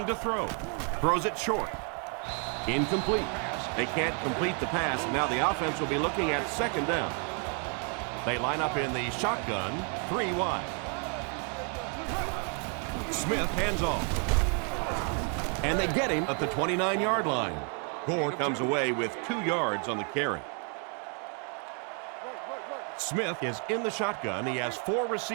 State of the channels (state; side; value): quieter; left; 39.8 dB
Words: to throw. Throws it short. Incomplete. They can't complete the pass. Now the offense will be looking at second down. They line up in the shotgun, 3 wide. Smith hands off. And they get him at the 29-yard line. Gore comes away with 2 yards on the carry. Smith is in the shotgun. He has 4